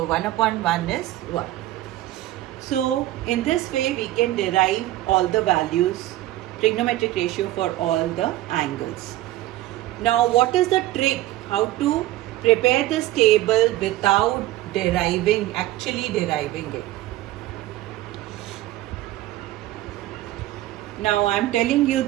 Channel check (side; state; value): left; quieter; 15.7 dB